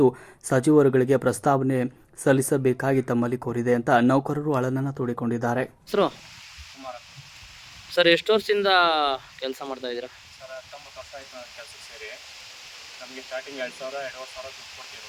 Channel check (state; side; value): identical; both; correlation 1.00